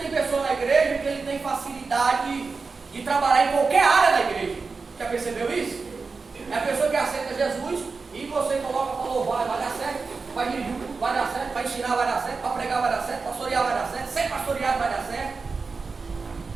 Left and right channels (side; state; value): left; quieter; 4.5 dB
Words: pessoa na igreja que ele tem facilidade de trabalhar em qualquer área da igreja. Já percebeu isso? É a pessoa que aceita Jesus e você coloca para louvar, vai dar certo, vai dirigir, vai dar certo, vai ensinar, vai dar certo, para pregar vai dar certo, pastorear vai dar certo, ser pastoreado vai dar certo.